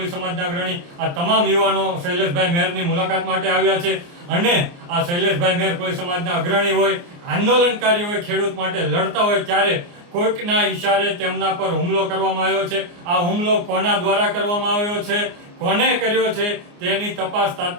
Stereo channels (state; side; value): late; left; 29 ms